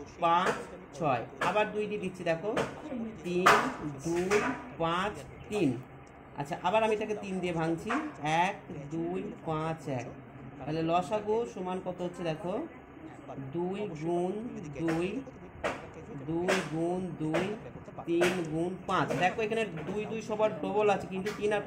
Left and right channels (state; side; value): identical; both; correlation 1.00